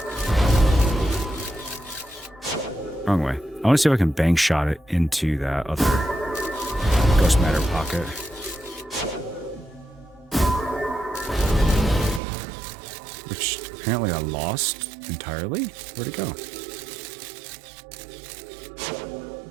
Wrong way. I want to see if I can bank shot it into that other ghost matter pocket. Which apparently I lost entirely. Where'd it go?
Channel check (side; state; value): left; drops out; at 12.2 s